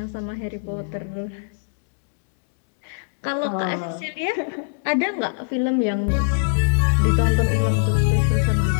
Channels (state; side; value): silent; right; digital silence